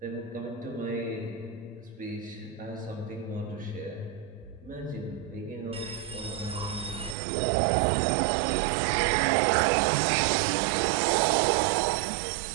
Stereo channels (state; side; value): drops out; left; at 7.2 s